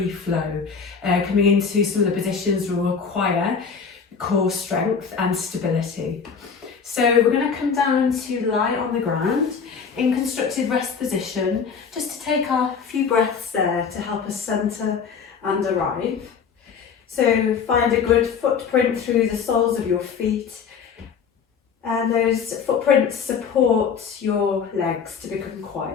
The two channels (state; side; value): quieter; right; 6.2 dB